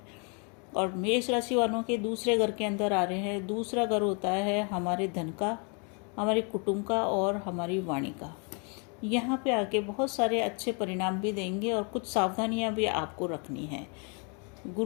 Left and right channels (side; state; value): right; quieter; 36.2 dB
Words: और मेष राशि वालों के दूसरे घर के अंदर आ रहे हैं। दूसरा घर होता है हमारे धन का, हमारे कुटुंब का और हमारी वाणी का। यहाँ पे आके बहुत सारे अच्छे परिणाम भी देंगे और कुछ सावधानियाँ भी आपको रखनी है।